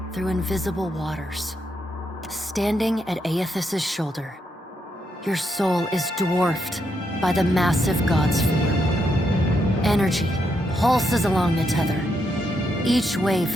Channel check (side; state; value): both; normal; correlation 0.80